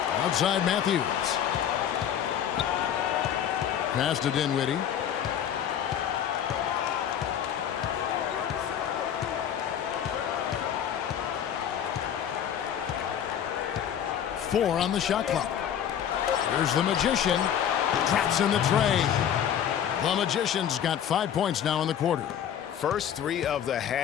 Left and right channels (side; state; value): right; quieter; 9.4 dB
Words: Outside Matthews. Pass to Dinwiddie. Four on the shot clock. Here's the Magician. Drops in the tray. The Magician's got 5 points now in the quarter. First 3 of the